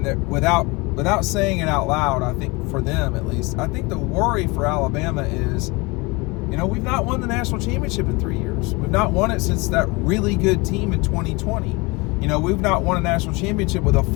that without saying it out loud, I think for them at least, I think the worry for Alabama is, you know, we've not won the national championship in 3 years. We've not won it since that really good team in 2020. You know, we've not won a national championship with a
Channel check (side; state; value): right; quieter; 25.8 dB